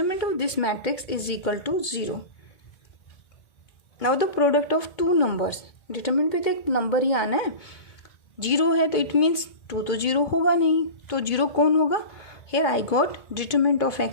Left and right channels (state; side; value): late; right; 2.2 ms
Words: of this matrix is equal to 0। Now the product of 2 numbers, determinant पे तो एक नंबर ही आना है, 0 है तो इट मीन्स 2 तो 0 होगा नहीं, तो 0 कौन होगा, here I got determinant of